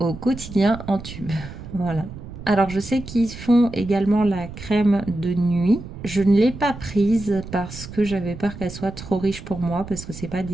quotidien en tube. Voilà. Alors je sais qu'ils font également la crème de nuit. Je ne l'ai pas prise parce que j'avais peur qu'elle soit trop riche pour moi, parce que c'est pas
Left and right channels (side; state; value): right; noise; rumble, 12 dB below the sound